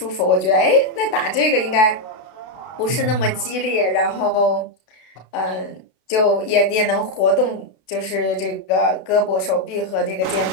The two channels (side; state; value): right; late; 33 ms